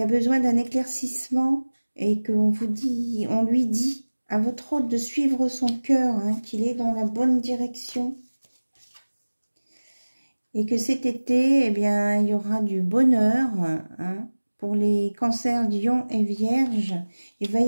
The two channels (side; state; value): both; inverted; correlation -1.00